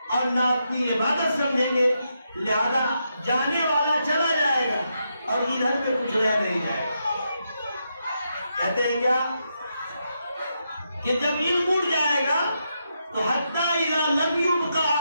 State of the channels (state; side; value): inverted; both; correlation -0.82